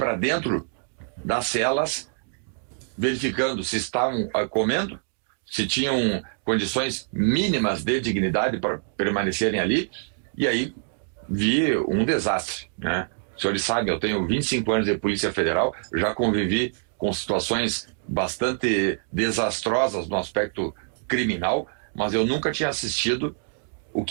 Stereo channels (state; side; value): silent; left; digital silence